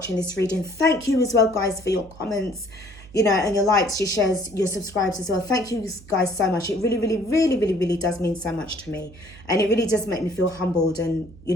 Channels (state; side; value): noise; right; hum, 21 dB below the sound